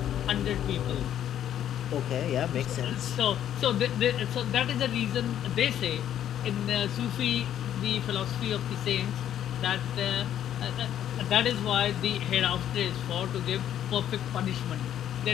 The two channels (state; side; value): quieter; right; 10.7 dB